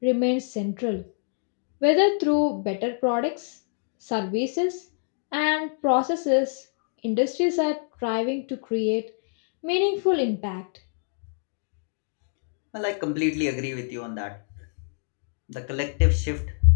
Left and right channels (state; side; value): silent; right; digital silence